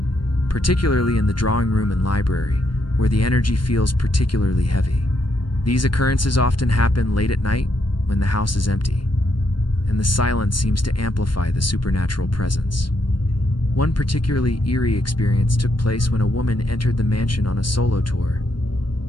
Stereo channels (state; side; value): late; right; 0.72 ms